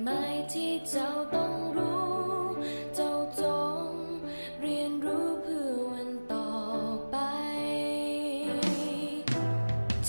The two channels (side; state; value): both; inverted; correlation -1.00